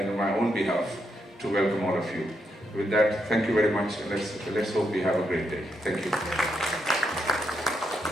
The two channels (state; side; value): normal; both; correlation 0.81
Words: on my own behalf to welcome all of you. With that, thank you very much, and let's hope we have a great day. Thank you.